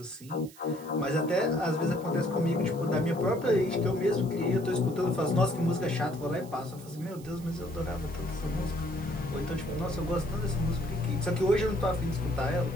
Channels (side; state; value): right; noise; hiss, 21 dB below the sound